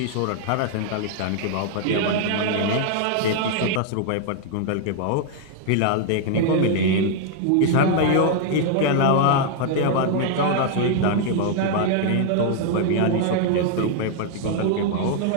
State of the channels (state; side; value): different; both; correlation 0.00